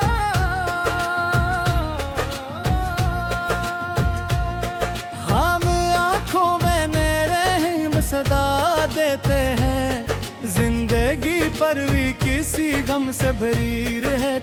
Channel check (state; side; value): identical; both; correlation 1.00